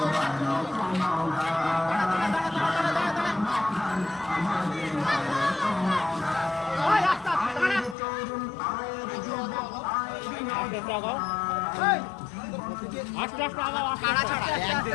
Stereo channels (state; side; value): drops out; right; at 8.0 s